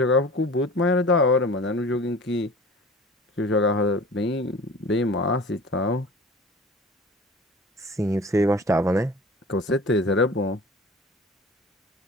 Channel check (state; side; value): normal; both; correlation 0.41